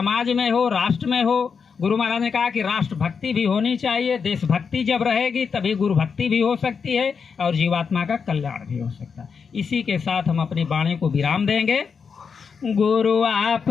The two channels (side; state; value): right; quieter; 5.9 dB